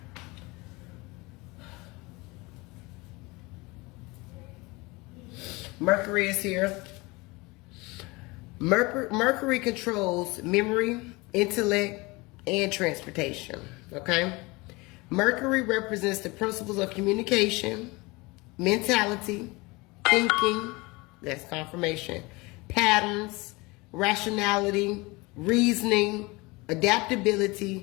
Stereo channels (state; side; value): quieter; right; 24.3 dB